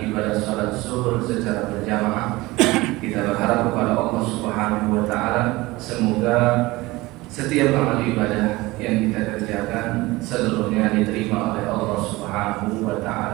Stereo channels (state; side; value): quieter; left; 20.7 dB